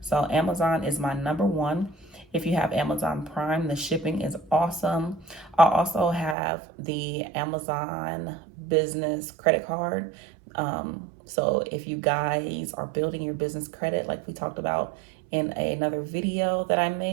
So Amazon is my number one. If you have Amazon Prime, the shipping is awesome. I also have the Amazon business credit card. So if you guys are building your business credit, like we talked about in another video that I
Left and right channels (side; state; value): left; drops out; at 6.4 s